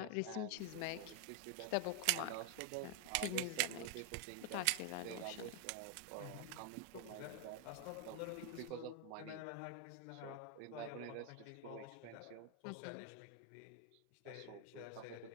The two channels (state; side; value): different; both; correlation 0.00